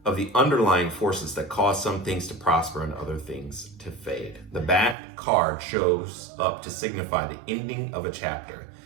of the underlying forces that cause some things to prosper and other things to fade. The Bat card shows up to signify the ending of a chapter,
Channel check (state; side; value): drops out; left; at 5.0 s